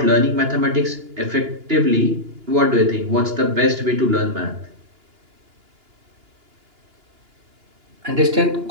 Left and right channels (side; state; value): left; late; 2.9 ms